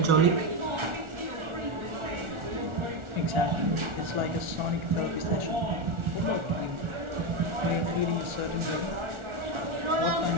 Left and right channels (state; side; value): late; left; 1.4 ms